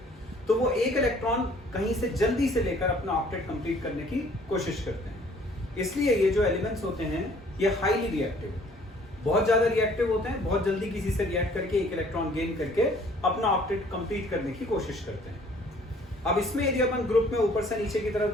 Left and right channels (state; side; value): normal; both; correlation 0.57